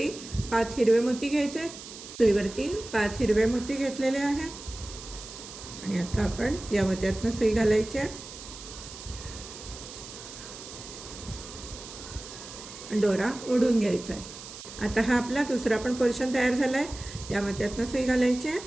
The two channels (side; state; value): right; noise; hiss, 13 dB below the sound